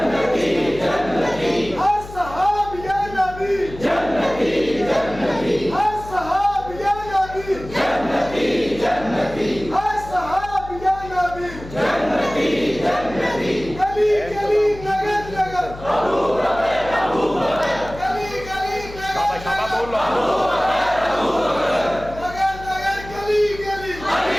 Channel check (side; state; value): left; noise; hum, 14 dB below the sound